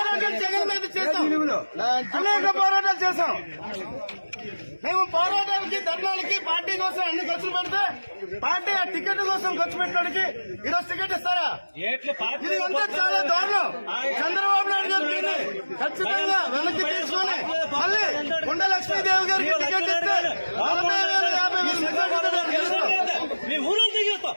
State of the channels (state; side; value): inverted; both; correlation -1.00